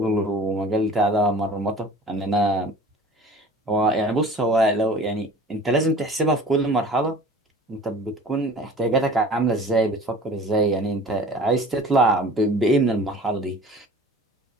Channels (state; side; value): normal; both; correlation 0.44